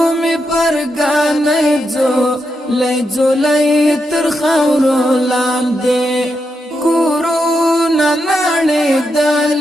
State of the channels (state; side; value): normal; both; correlation 0.84